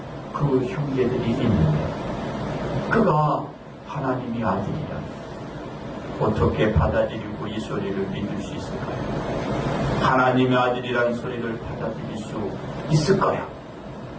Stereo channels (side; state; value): both; identical; correlation 1.00